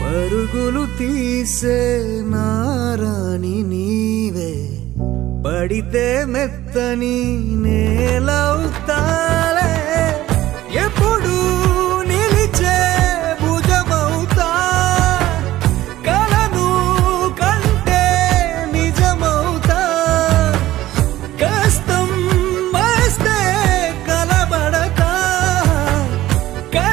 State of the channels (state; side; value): quieter; left; 15.3 dB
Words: పరుగులు తీసే నారాణి నీవే పడితే మెత్తని నేలవుతాలే ఎప్పుడు నిలిచే భుజమవుతా కలను కంటే నిజమవుతా కష్టం వస్తే కలబడక